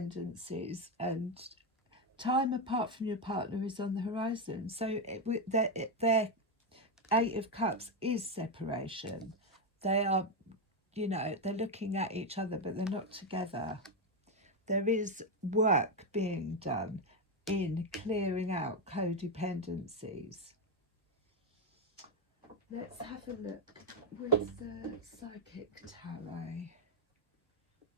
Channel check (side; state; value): both; normal; correlation 0.05